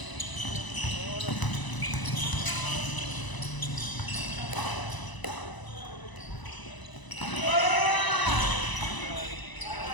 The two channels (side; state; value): right; late; 1.0 ms